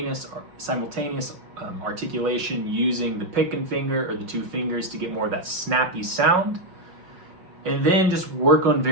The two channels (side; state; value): left; late; 5.5 ms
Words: articulation using the pick and finger or the two fingers to get more of that snappy sound. And then just work on